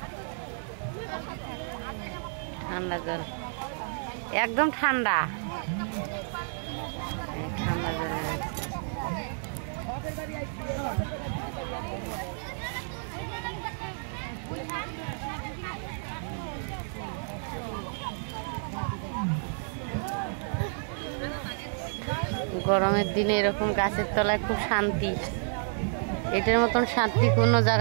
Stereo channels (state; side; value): silent; left; digital silence